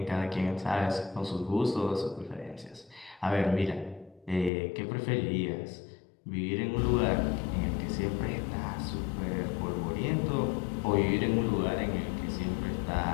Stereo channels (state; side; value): drops out; right; at 4.5 s